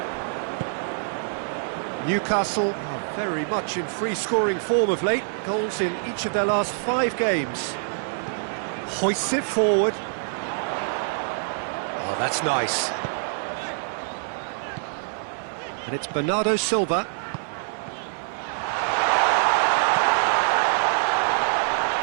Newcastle are very much in free-scoring form of late. Goals in each of their last 5 games. Hoists it forward. Oh, that's nice. And it's Bernardo Silva.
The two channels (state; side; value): silent; left; 55 dB below the other